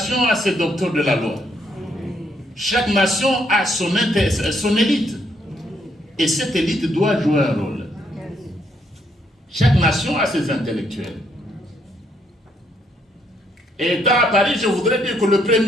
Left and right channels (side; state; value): both; normal; correlation 0.73